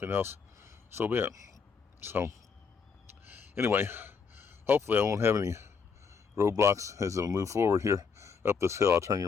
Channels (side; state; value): right; quieter; 5.7 dB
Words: else, so be it. So anyway, hopefully I won't have any roadblocks as I move forward here up this hill. I'll turn